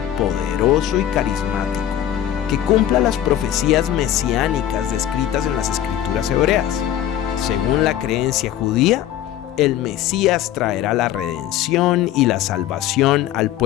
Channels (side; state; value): right; quieter; 11.6 dB